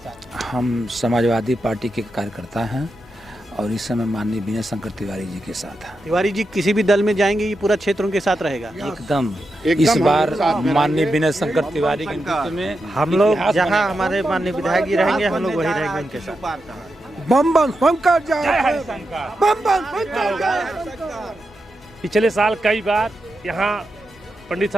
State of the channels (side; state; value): both; normal; correlation 0.88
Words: हम समाजवादी पार्टी के कार्यकर्ता हैं और इस समय माननीय विनय शंकर तिवारी जी के साथ हैं। तिवारी जी किसी भी दल में जाएंगे ये पूरा क्षेत्र उनके साथ रहेगा? एकदम इस बार माननीय विनय शंकर तिवारी के नेतृत्व में हम लोग जहां हमारे माननीय विधायक जी रहेंगे हम लोग वही रहेंगे उनके साथ। बम बम शंकर जय, बम बम शंकर जय। पिछले साल कई बार यहाँ पंडित